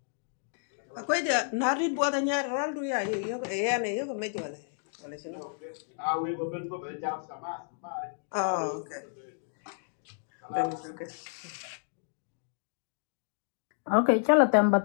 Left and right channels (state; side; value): silent; right; digital silence